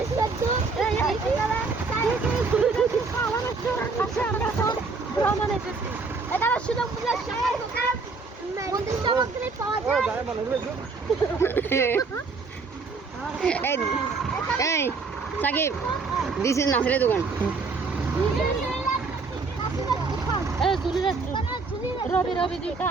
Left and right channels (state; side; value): quieter; left; 4.3 dB